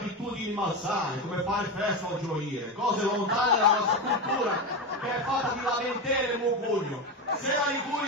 malsane, come fare festa o gioire, cose lontane dalla nostra cultura, che è fatta di lamentele e mugugno. Se la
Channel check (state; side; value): normal; both; correlation 0.16